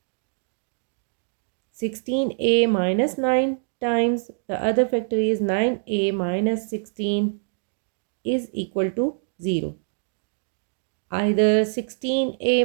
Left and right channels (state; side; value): silent; left; digital silence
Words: 16a minus 9 times the other factor is 9a minus 16 is equal to 0. Either